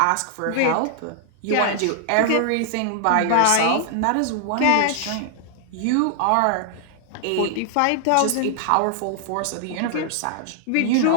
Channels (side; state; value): both; different; correlation 0.00